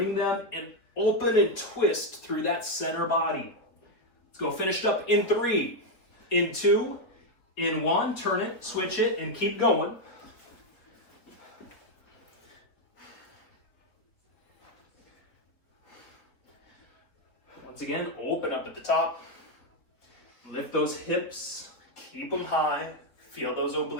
them and open and twist through that center body. Let's go finished up in 3, in 2, in 1. Turn it, switch it, and keep going. Once again, open up at the top. Lift those hips, keep them high. Feel those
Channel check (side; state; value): right; late; 3.8 ms